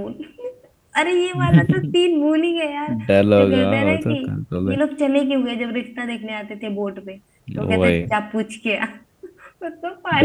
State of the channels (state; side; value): identical; both; correlation 1.00